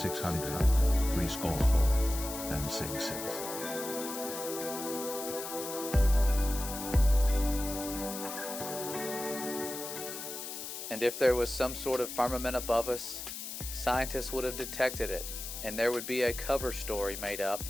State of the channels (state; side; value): noise; left; hiss, 8 dB below the sound